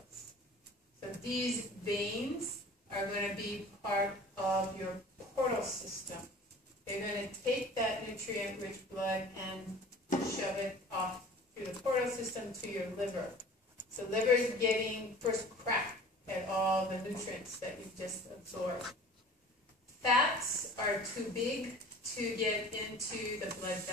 So these veins are going to be part of your portal system. They're going to take that nutrient-rich blood and shove it off through the portal system to your liver. So liver is getting first crack at all the nutrients that you've just absorbed. Fats are too big to get into the blood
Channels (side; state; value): both; normal; correlation 0.44